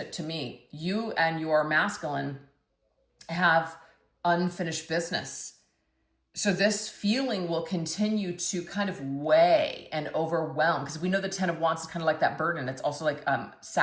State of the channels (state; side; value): identical; both; correlation 1.00